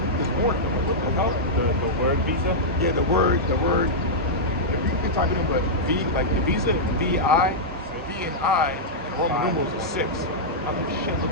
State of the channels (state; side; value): normal; both; correlation -0.09